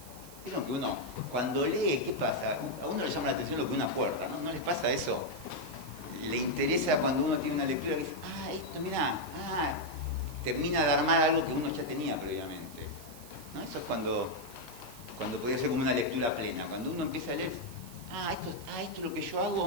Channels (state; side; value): noise; right; hiss, 19 dB below the sound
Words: Digo que uno, cuando lee, ¿qué pasa? A uno le llama la atención lo que uno aporta, ¿no? ¿No les pasa eso? Le interesa cuando uno tiene una lectura y dice, esto, mirá, termina de armar algo que uno ya tenía previamente, ¿no? Eso es cuando podría ser como una lectura plena. Cuando uno empieza a leer, esto lo que yo